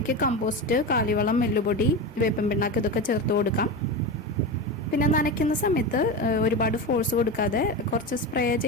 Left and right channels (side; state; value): both; normal; correlation 0.20